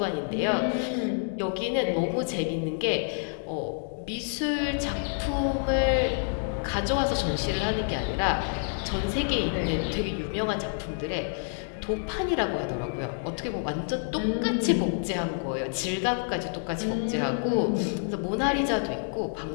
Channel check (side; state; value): right; silent; 59 dB below the other